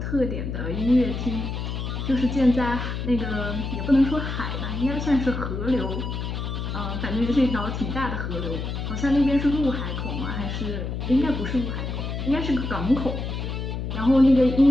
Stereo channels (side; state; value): left; noise; hum, 4 dB below the sound